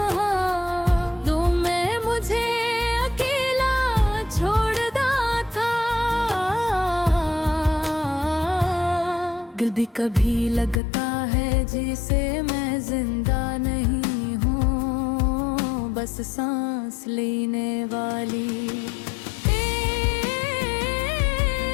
तुमने मुझे अकेला छोड़ा था। दिल भी कभी लगता है जिसे मैं जिंदा नहीं हूँ, बस सांस लेने वाली।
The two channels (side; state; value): right; drops out; at 10.8 s